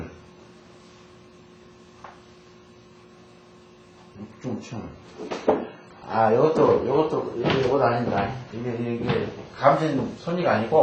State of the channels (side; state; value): both; identical; correlation 1.00